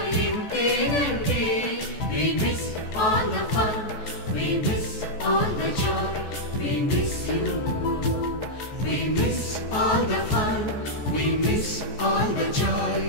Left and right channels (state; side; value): late; right; 14 ms